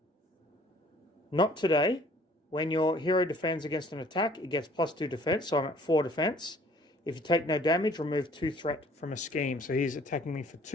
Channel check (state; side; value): normal; both; correlation 0.56